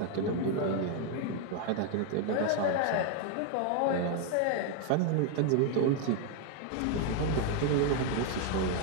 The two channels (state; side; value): different; both; correlation 0.00